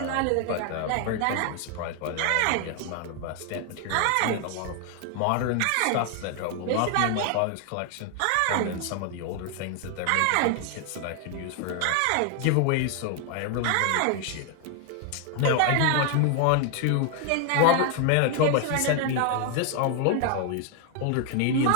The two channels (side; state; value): both; different; correlation 0.00